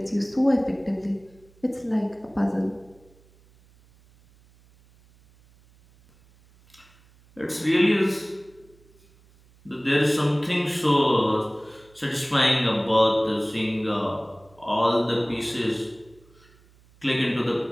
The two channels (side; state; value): right; noise; hum, 29 dB below the sound